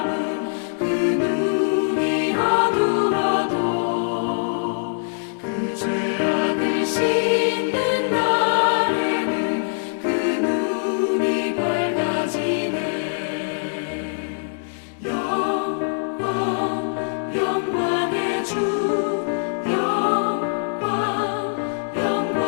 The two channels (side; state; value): right; silent; digital silence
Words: 그 눈이 어두워도 그 죄악을 씻는 날에는 그 눈이 밝아지네. 영광의 주